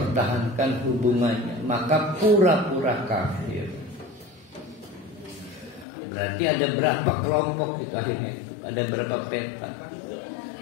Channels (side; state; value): right; drops out; at 5.9 s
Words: hubungannya, maka pura-pura kafir. Berarti ada berapa kelompok itu akhirnya itu? Ada berapa peta?